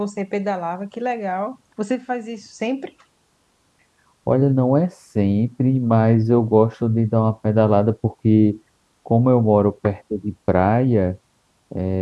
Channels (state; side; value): identical; both; correlation 1.00